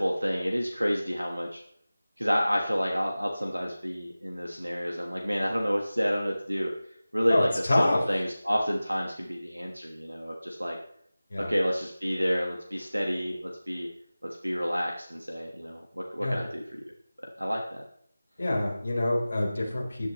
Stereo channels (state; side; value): inverted; both; correlation -0.97